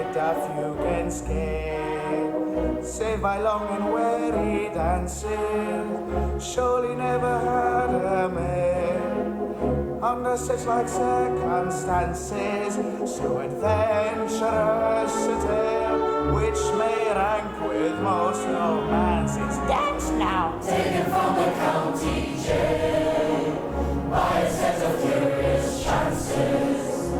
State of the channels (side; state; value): both; identical; correlation 1.00